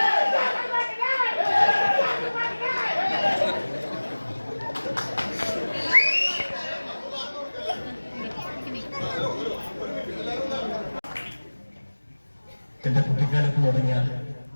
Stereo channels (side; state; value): both; inverted; correlation -1.00